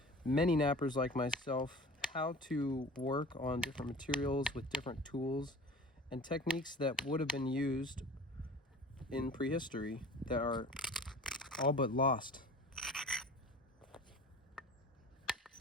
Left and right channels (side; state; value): both; normal; correlation 0.41